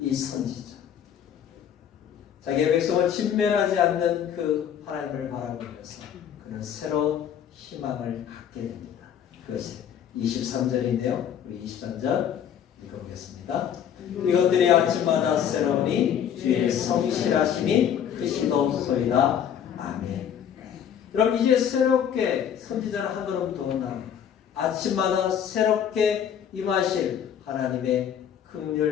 이 선지자, 자기의 백성을 진멸하지 않는 그 하나님을 바라보면서 그는 새로운 희망을 갖게 됩니다. 그것이 23절인데요. 우리 23절 읽어보겠습니다. 이것들이 아침마다 새로우니 주의 성실하심이 크시도소이다. 아멘. 그럼 이제 새롭게 선지자는 한 걸음 더 나갑니다. 아침마다 새롭게 임하실 하나님의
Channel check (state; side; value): quieter; right; 9.0 dB